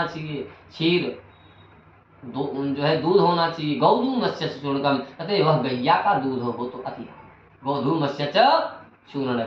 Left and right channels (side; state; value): both; identical; correlation 1.00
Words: चाहिए, क्षीर जो है दूध होना चाहिए, गोधूमश्च चूर्णकम। कहते हैं वह गैया का दूध हो तो अति, गोधूमश्च